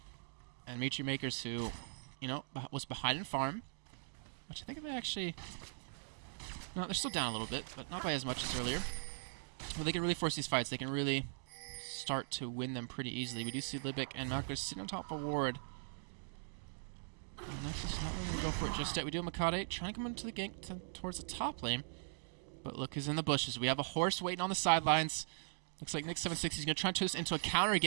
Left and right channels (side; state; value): left; silent; digital silence